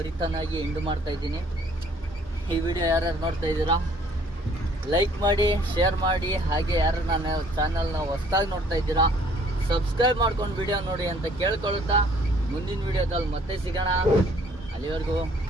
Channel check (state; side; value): normal; both; correlation 0.59